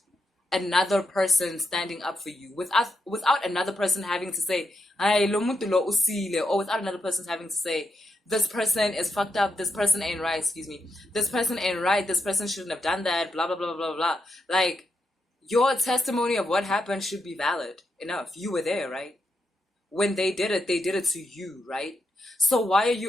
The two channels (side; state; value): both; normal; correlation 0.84